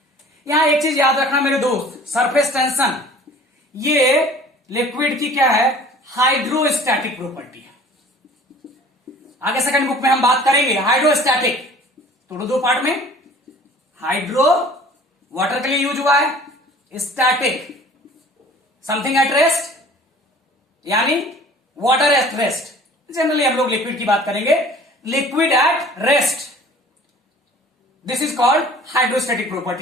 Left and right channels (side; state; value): both; normal; correlation 0.48